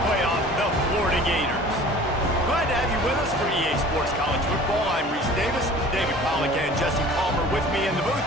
playoff, the Florida Gators. Glad to have you with us for EA Sports College Football. I'm Reese Davis, David Pollack and Jesse Palmer with me in the booth.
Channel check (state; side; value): normal; both; correlation 0.45